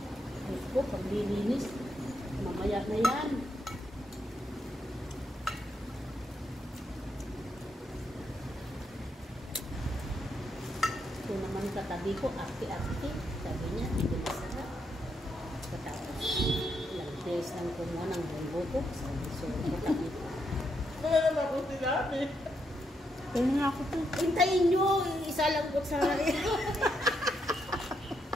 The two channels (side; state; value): both; normal; correlation 0.79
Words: Diyos ko, paglilinis, mamaya na yan. Ito naman katabi ko, ate-ate, sabi niya, hindi masarap. Katapos, ilang days lang kumuha ng buko ko, sabi so, katabi ko. Wala naman ako sinabi. Kaya nga ako to. Hintayin nyo, isa lang ko sa